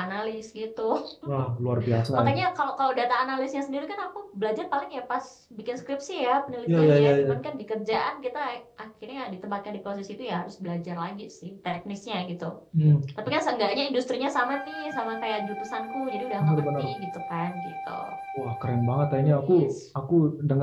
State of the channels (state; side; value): identical; both; correlation 1.00